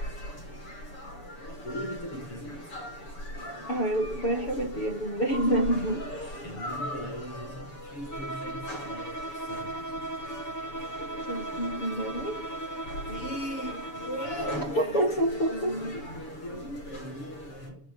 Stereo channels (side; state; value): right; late; 7.0 ms